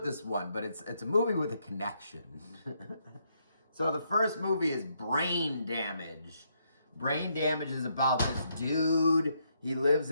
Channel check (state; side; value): inverted; both; correlation -0.76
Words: this one, but it's a movie with a connection. So the first movie is Brain Damage. Brain Damage is about this dude. He lives